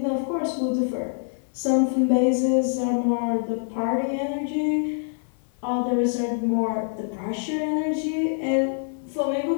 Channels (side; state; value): right; silent; 55 dB below the other